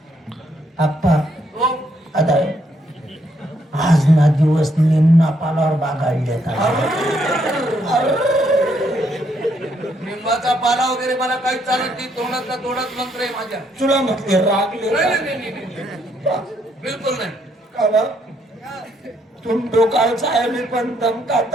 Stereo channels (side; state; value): both; normal; correlation 0.72